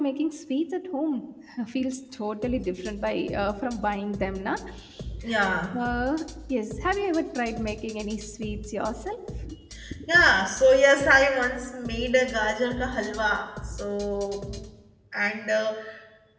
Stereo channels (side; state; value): both; identical; correlation 1.00